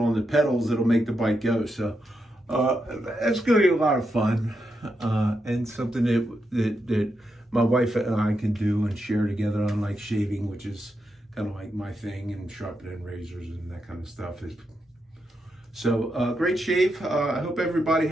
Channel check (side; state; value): both; normal; correlation 0.84